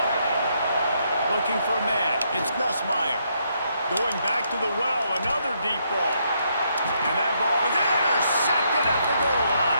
Looking for a man. It's Nussmeier. Going back to the well. Another deep ball. And that ball is intercepted at the goal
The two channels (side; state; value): both; inverted; correlation -0.75